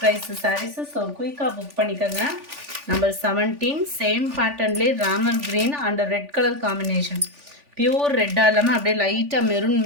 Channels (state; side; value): late; left; 3.4 ms